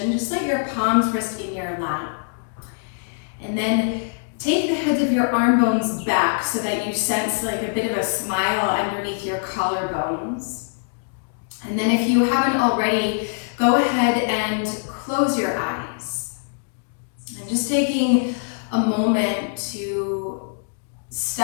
just let your palms rest in your lap. And then take the heads of your arm bones back so that you sense like a bit of a smile underneath your collarbones. And then if you haven't already, go ahead and close your eyes. And just taking a moment to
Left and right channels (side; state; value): right; silent; digital silence